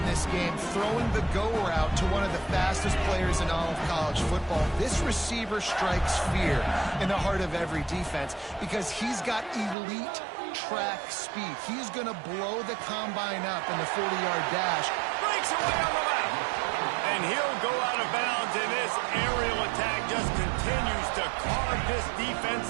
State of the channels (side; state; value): left; drops out; at 9.8 s